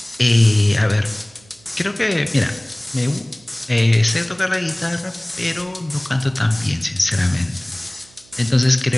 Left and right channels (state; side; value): noise; right; hum, 28 dB below the sound